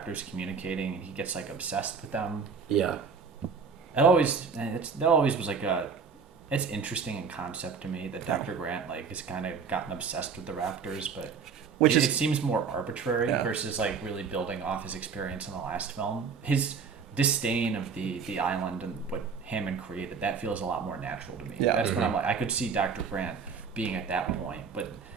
communicating, and he gets like obsessed with them. Yeah. That always was like it's interesting in concept to me that Dr. Grant like has kind of gotten obsessed with the raptors, but it seems more arbitrary versus like really building off his experience in the last film. His disdain of the island and what Hammond created, that feels a lot more natural to me. Yeah. That's when I'm like, I could see Dr. Grant being at that point, but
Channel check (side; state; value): left; quieter; 5.7 dB